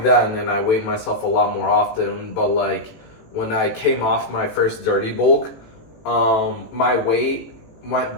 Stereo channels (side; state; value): right; late; 18 ms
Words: then and I weighed myself a lot more often. But like when I came off my first dirty bulk, my weight went